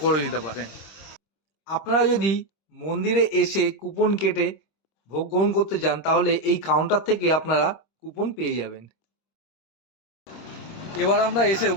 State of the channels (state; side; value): late; right; 25 ms